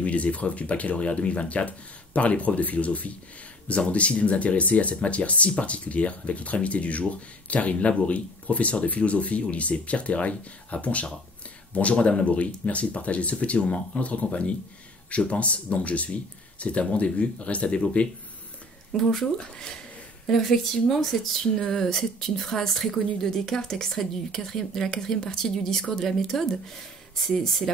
des épreuves du baccalauréat 2024 par l'épreuve de philosophie, nous avons décidé de nous intéresser à cette matière si particulière avec notre invitée du jour, Karine Laborie, professeure de philosophie au lycée Pierre-Terrail à Pontcharrat. Bonjour Madame Laborie, merci de partager ce petit moment en notre compagnie. Je pense, donc je suis. C'est un bon début, reste à développer. Bonjour. Alors effectivement, c'est une phrase très connue de Descartes, extraite de la 4e partie du discours de la méthode. C'est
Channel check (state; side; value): normal; both; correlation 0.51